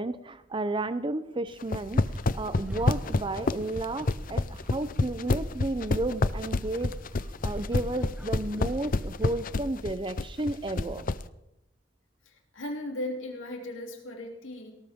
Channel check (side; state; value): both; normal; correlation 0.68